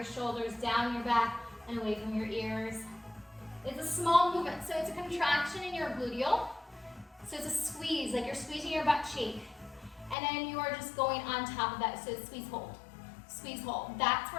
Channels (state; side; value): drops out; right; at 10.2 s